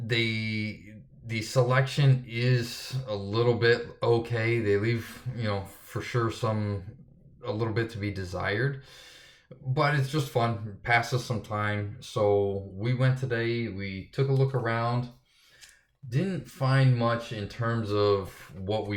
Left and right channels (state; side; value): identical; both; correlation 1.00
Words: selection is a little bit okay. They leave, for sure some a little bit to be desired. But it's just fun, passes some time. So we went today, we took a look around. Didn't find much in terms of what